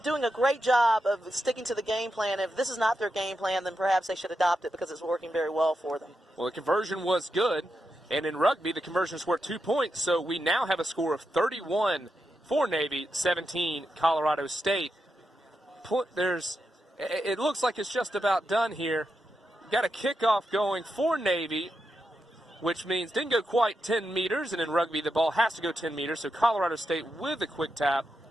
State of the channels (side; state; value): both; normal; correlation 0.86